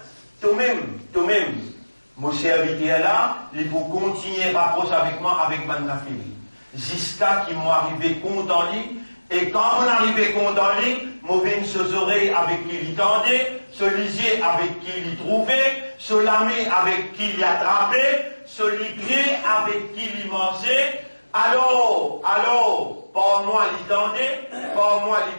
toi-même. Mon serviteur là, il faut continuer à rapprocher avec moi avec mon nafil. Jusqu'à qu'il m'arrive compte en lui, et quand on arrive compte en lui, m'ouvrir ses oreilles avec qui il tendait, se lisier avec qui il trouvait, se lamer avec qui il attrapait, se lipier avec qui il mangeait. Alors, par moi il tendait, par moi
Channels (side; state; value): both; inverted; correlation -1.00